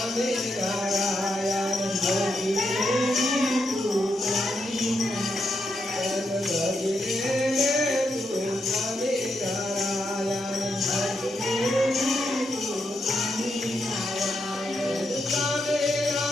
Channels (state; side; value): normal; both; correlation 0.82